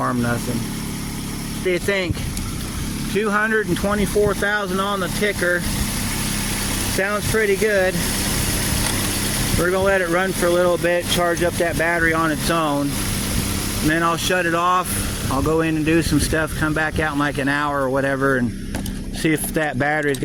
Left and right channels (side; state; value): both; identical; correlation 1.00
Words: nothing. What do you think? 224,000 on the ticker. Sounds pretty good. We're gonna let it run for a little bit, charge up that battery on its own, and then I'll shut it off. I'll go in and do some stuff, come back out in like an hour or whatever, and see if that battery's